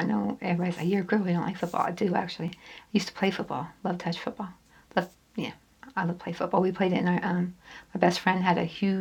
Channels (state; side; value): identical; both; correlation 1.00